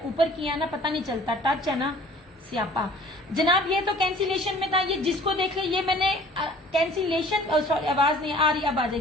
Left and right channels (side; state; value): both; normal; correlation 0.51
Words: ऊपर किया ना, पता नहीं चलता, टच है ना सियापा। जनाब ये तो कैंसिलेशन में था, ये जिसको देख ले, ये मैंने कैंसिलेशन, सॉरी आवाज नहीं आ रही, अब आ